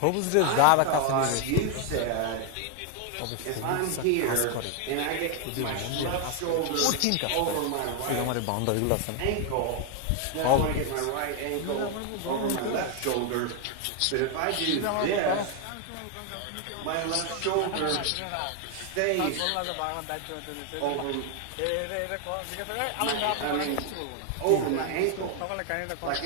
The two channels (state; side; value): different; both; correlation 0.01